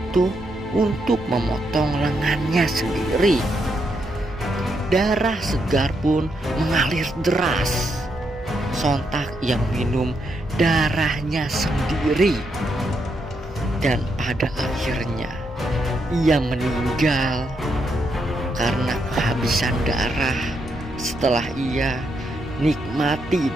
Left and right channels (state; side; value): normal; both; correlation 0.80